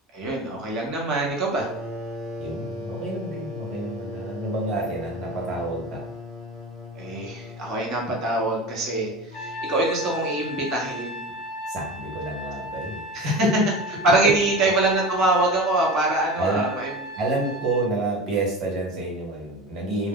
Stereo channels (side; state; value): both; normal; correlation 0.31